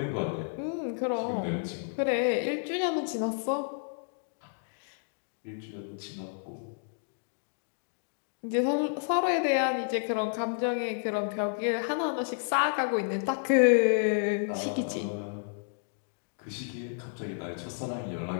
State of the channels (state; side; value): silent; right; digital silence